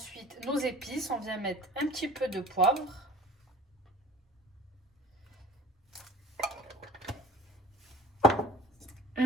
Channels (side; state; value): both; normal; correlation 0.46